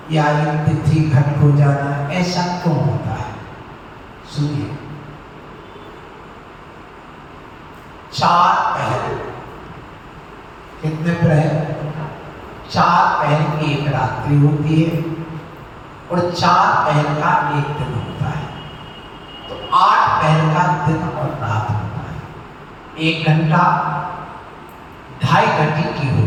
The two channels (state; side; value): identical; both; correlation 1.00